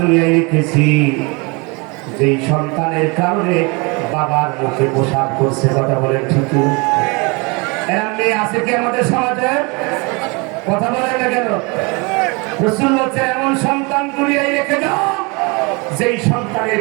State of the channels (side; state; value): left; quieter; 29.0 dB